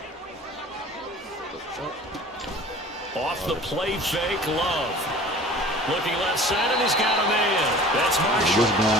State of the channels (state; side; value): normal; both; correlation 0.44